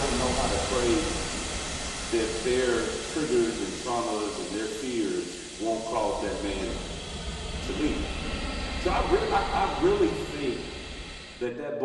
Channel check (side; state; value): both; identical; correlation 1.00